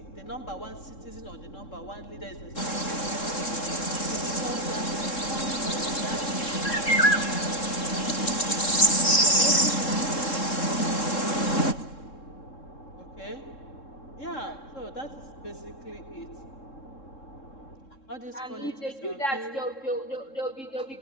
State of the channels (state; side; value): late; right; 3.7 ms